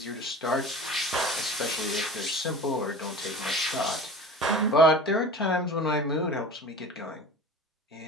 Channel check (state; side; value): normal; both; correlation 0.36